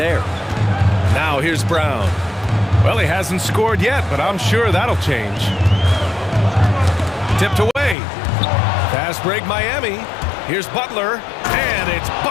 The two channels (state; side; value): drops out; right; at 8.0 s